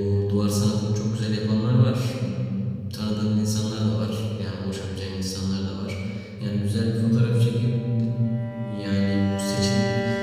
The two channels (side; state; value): both; identical; correlation 1.00